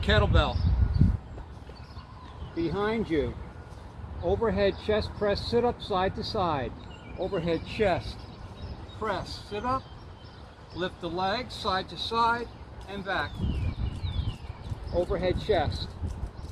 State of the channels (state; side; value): identical; both; correlation 1.00